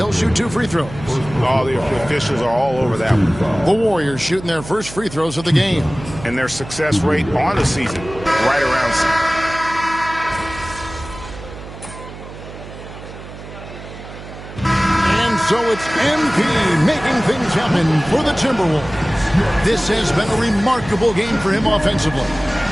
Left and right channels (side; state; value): right; noise; hum, 14 dB below the sound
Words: shoot 2 free throws. All the officials are all over that one. The Warriors shooting their first free throws of the game. And their success rate on the season, right around 6. And so it's MP making things happen for the Timberwolves. This has been a remarkable game for him offensively.